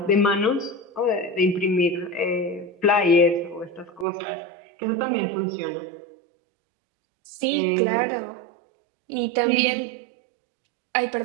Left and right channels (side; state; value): left; drops out; at 4.0 s